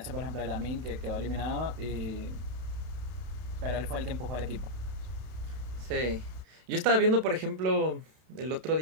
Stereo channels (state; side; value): late; left; 32 ms